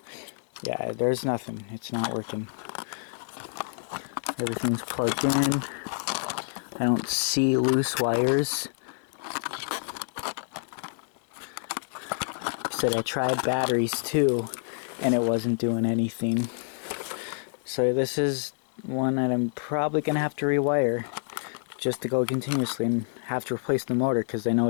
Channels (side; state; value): right; silent; digital silence